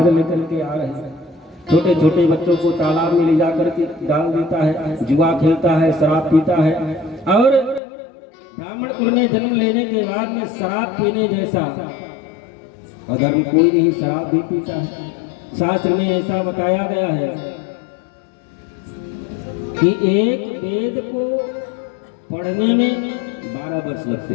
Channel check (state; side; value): drops out; right; at 7.8 s